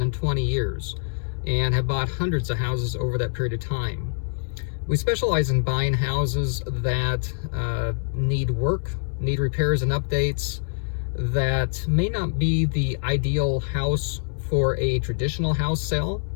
20 years and have bought hundreds of houses over that period of time. We specialize in buying houses that need work, need repairs and updates, that may not be the ideal house for a traditional house sale,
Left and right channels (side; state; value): right; silent; digital silence